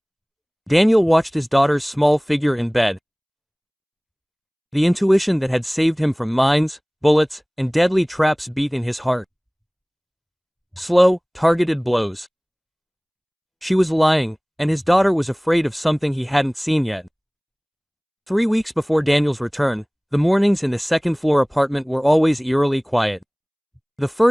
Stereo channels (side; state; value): both; identical; correlation 1.00